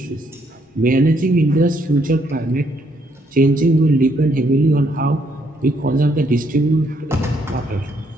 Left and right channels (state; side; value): normal; both; correlation 0.71